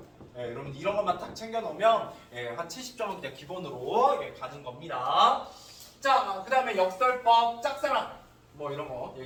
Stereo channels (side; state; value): both; identical; correlation 1.00